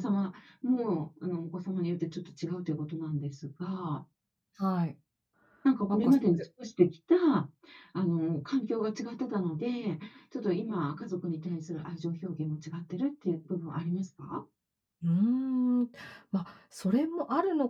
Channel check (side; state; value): both; identical; correlation 1.00